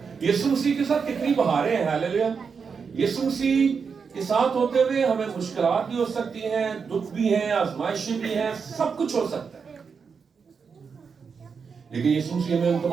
یسوع مسیح کے ساتھ کتنی بہاریں ہیں. ہاللیلویا. یسوع مسیح کے ساتھ ہوتے ہوئے ہمیں مشکلات بھی ہو سکتی ہیں، دکھ بھی ہیں، آزمائشیں بھی ہیں، سب کچھ ہو سکتا ہے، لیکن یسوع مسیح ہمیں ان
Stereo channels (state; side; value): quieter; left; 5.8 dB